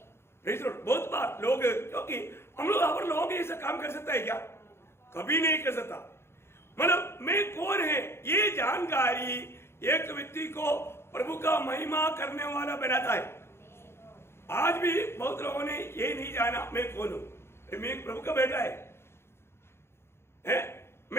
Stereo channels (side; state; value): right; late; 0.12 ms